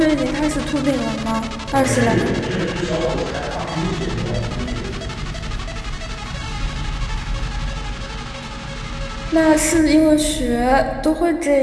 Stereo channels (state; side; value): identical; both; correlation 1.00